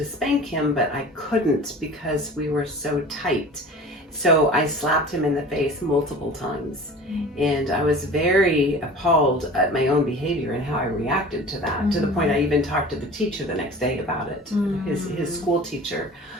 spank him, but I couldn't because we were so tight. So I slapped him in the face multiple times. And I was very appalled at my own behavior and how I reacted to that, to the point I even talked to the teacher the next day about it, his school teacher.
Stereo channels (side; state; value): both; normal; correlation 0.40